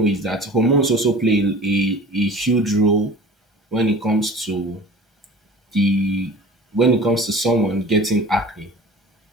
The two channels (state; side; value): normal; both; correlation 0.42